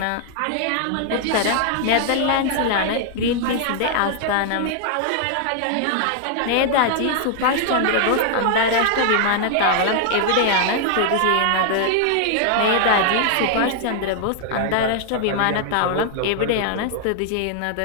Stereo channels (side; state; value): both; different; correlation 0.00